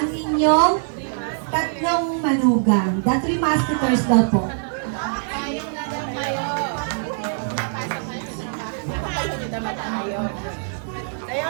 inyong tatlong manugang. The 3 musketeers daw po. Payong na daw kayo. Napasok kayo sa trabaho. Nakapagod na mata kayo. Ayaw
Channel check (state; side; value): silent; left; 57 dB below the other